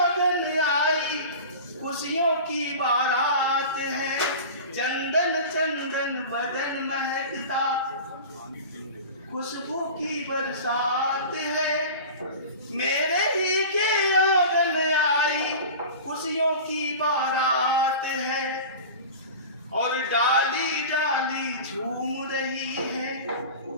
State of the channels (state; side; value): inverted; both; correlation -0.34